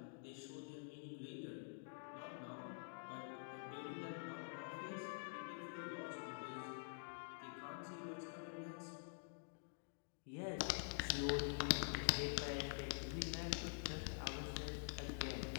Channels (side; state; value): right; silent; digital silence